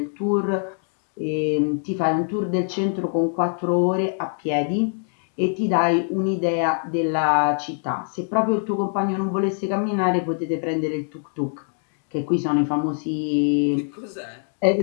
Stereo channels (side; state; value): right; silent; 63 dB below the other